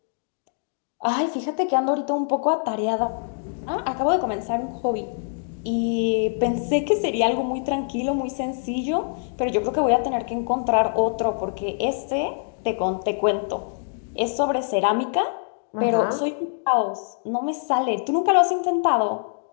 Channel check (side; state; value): right; silent; digital silence